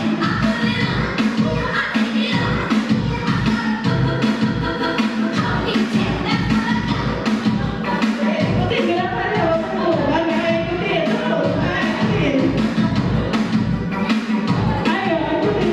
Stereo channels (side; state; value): both; identical; correlation 1.00